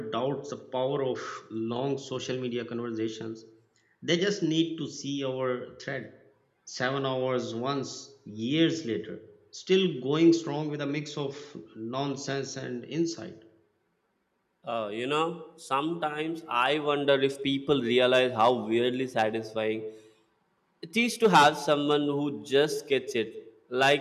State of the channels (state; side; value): identical; both; correlation 1.00